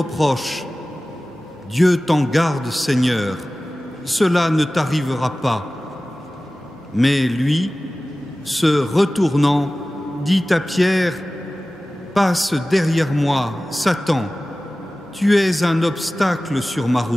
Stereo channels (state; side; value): normal; both; correlation 0.97